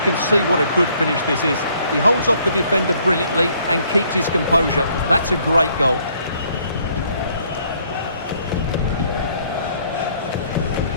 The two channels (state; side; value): inverted; both; correlation -0.65